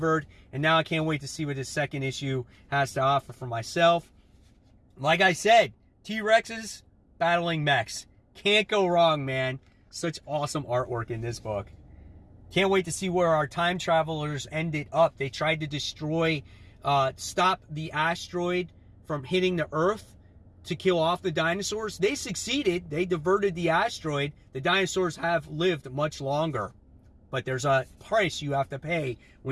and now I can't wait to see what this second issue has to offer for myself. Like I said, T-Rexes battling mechs. Can't go wrong, man. Such awesome artwork in this book. Can't wait to see where our time travelers ended up. They tried to destroy, stop the asteroid from hitting the Earth to kill off the dinosaurs. They succeeded. They diverted the asteroid. The dinosaurs have lived much longer. But there's a price you have to pay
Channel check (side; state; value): both; identical; correlation 1.00